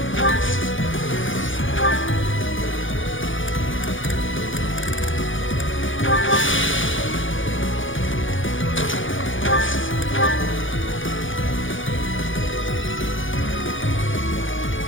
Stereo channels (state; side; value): late; right; 0.57 ms